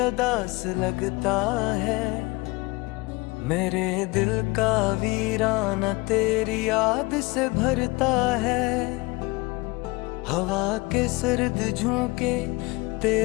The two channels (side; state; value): right; quieter; 24.1 dB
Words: लगता है, मेरे दिल का वीराना तेरी याद से भरता है। हवा के सर्द झोंके